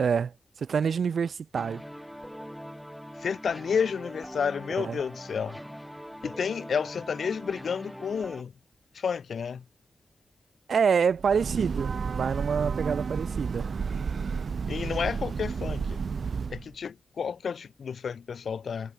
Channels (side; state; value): both; normal; correlation 0.82